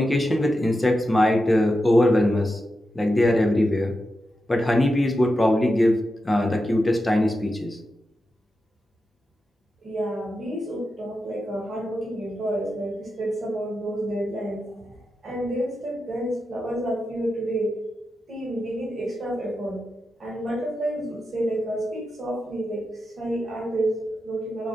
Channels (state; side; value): normal; both; correlation 0.89